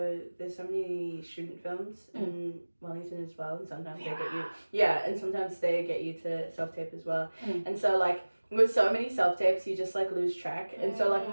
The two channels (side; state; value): both; inverted; correlation -1.00